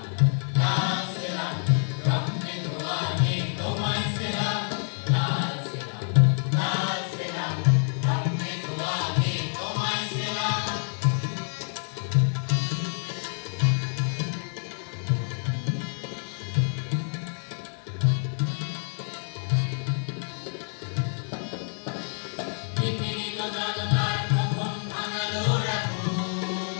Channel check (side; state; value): right; silent; digital silence